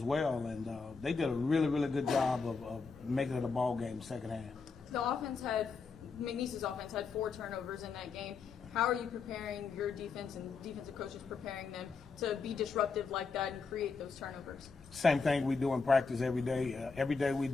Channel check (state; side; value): quieter; right; 4.8 dB